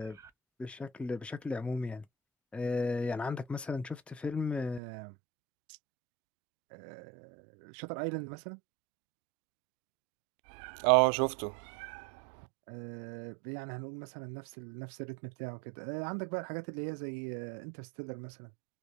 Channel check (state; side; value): drops out; left; at 4.8 s